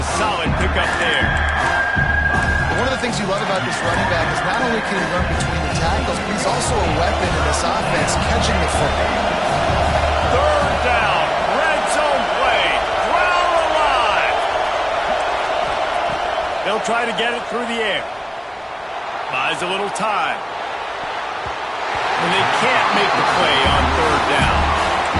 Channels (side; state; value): both; identical; correlation 1.00